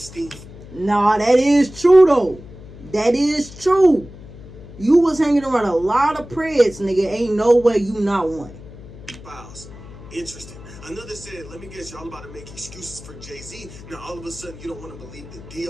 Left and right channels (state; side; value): noise; left; hum, 17 dB below the sound